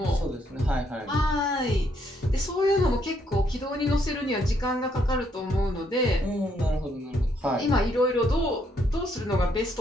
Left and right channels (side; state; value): both; normal; correlation 0.72